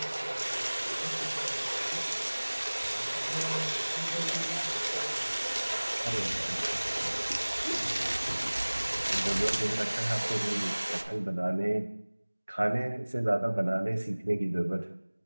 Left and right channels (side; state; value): both; inverted; correlation -1.00